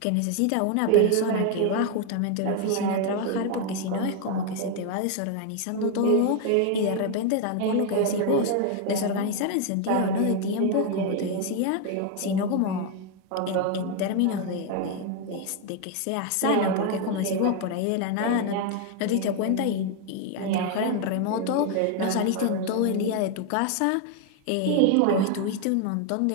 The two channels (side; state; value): both; different; correlation 0.01